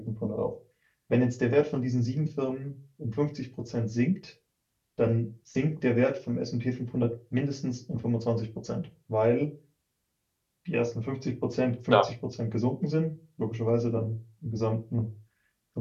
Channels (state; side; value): identical; both; correlation 1.00